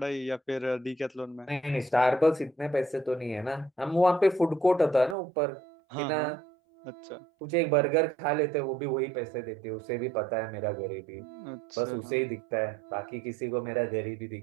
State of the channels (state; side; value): drops out; left; at 5.2 s